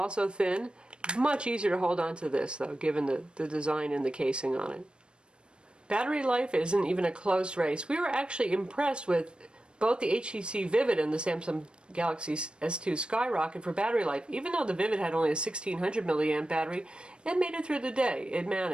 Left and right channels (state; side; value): late; left; 0.054 ms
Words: thin. Much easier to hold on to this, though, given the design and the casing on it. Battery life isn't even a close race. We were actually impressed with both the HTC Vivid and the Samsung Galaxy S2 Skyrocket for battery life. Even though the Vivid had only a 1600 milliamp battery, it made it through the day. It